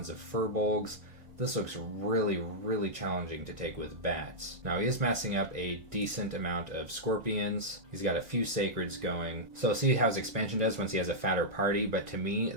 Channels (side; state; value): left; late; 2.0 ms